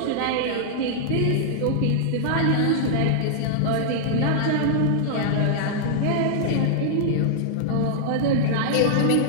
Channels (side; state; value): both; different; correlation -0.01